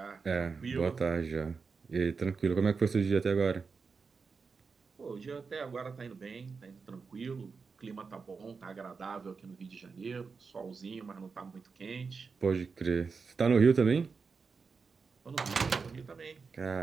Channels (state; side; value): quieter; left; 5.0 dB